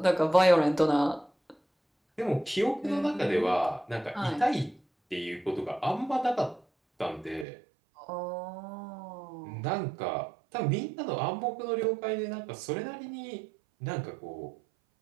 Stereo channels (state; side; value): drops out; left; at 7.5 s